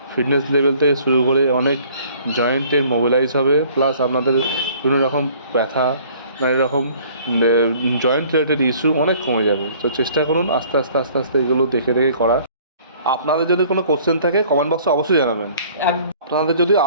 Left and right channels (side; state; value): both; inverted; correlation -0.54